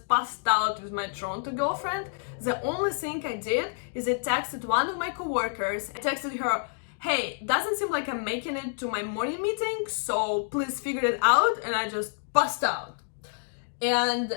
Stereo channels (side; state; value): right; silent; digital silence